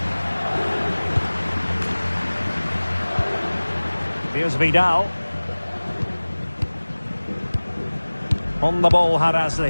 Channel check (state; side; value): inverted; both; correlation -1.00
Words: Here's Vidal. On the ball,